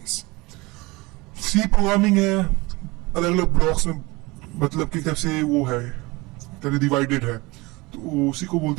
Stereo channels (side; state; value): left; quieter; 23.4 dB